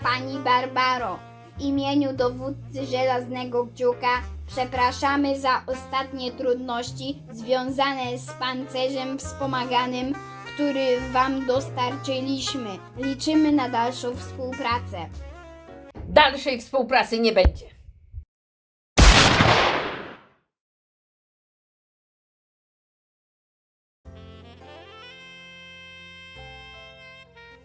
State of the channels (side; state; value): both; identical; correlation 1.00